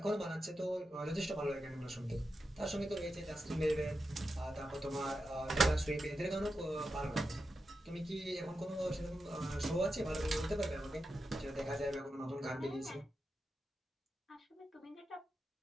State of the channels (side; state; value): both; normal; correlation 0.89